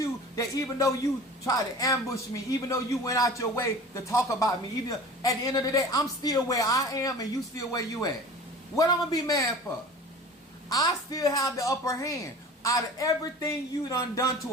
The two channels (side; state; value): both; normal; correlation 0.40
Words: that even though you tried to ambush me, even though you went out your way to talk about me, even at the end of the day, I'm still where I am and you still where you at. What I'm going to be mad for? I still have the upper hand. Out of everything you done